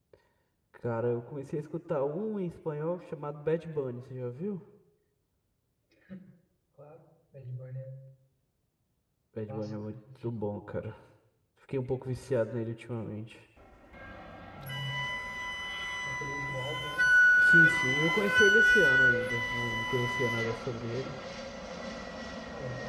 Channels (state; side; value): identical; both; correlation 1.00